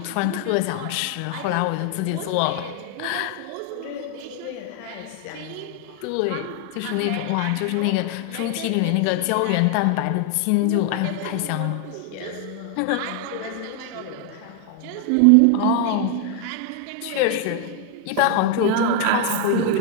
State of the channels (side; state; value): both; different; correlation 0.00